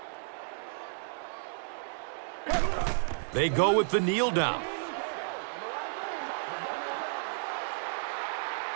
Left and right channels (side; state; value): left; silent; digital silence